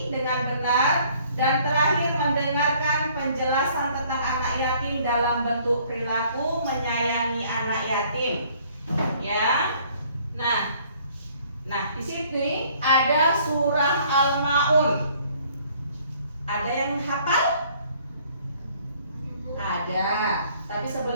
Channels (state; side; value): inverted; both; correlation -0.59